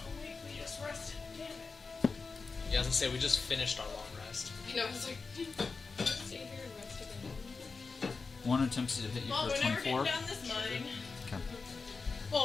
wait, we just rested. Damn it. Yeah, I was gonna say we just finished our long rest. You know, I was like, stay here and rest again. 1 attempts to hit you Well, for we're never 24. getting down this mine. Okay.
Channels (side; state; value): right; quieter; 4.5 dB